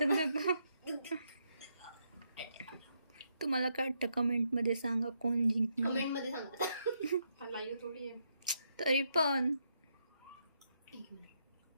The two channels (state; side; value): inverted; both; correlation -0.78